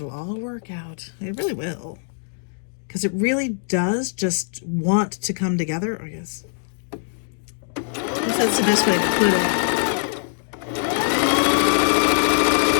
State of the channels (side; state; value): right; silent; digital silence